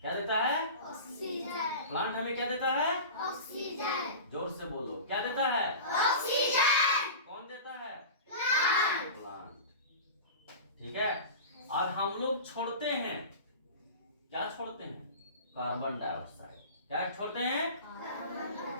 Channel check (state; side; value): inverted; both; correlation -0.33